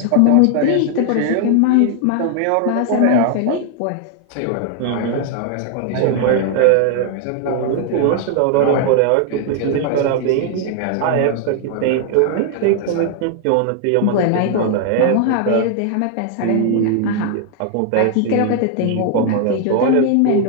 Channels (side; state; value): both; different; correlation 0.00